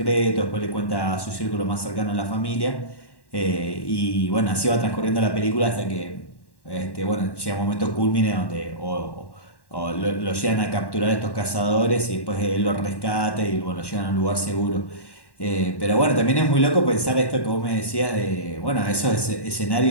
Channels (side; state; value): right; late; 1.1 ms